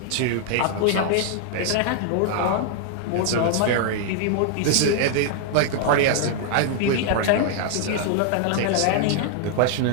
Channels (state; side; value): different; both; correlation 0.00